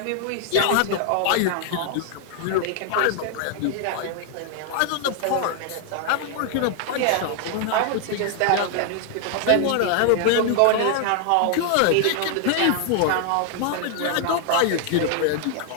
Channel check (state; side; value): different; both; correlation 0.00